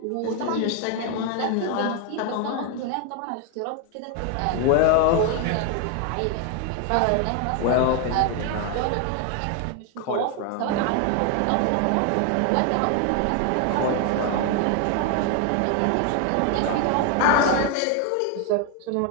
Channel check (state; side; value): different; both; correlation 0.01